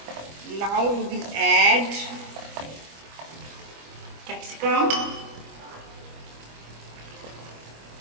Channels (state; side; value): late; left; 25 ms